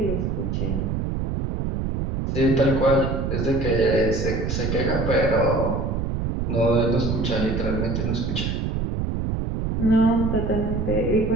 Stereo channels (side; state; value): right; noise; rumble, 1 dB below the sound